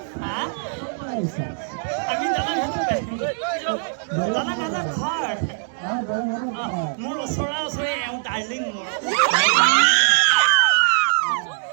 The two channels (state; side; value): silent; left; digital silence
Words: আমি দাদা ঘৰ মোৰ ওচৰা ওচৰি এওঁ ডাৰ্লিং মোৰ